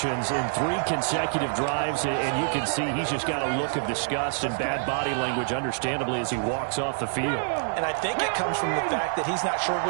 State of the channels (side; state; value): left; silent; digital silence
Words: in 3 consecutive drives, and you can see he's just got a look of disgust and bad body language, understandably, as he walks off the field. And I think it comes from the fact that he's not sure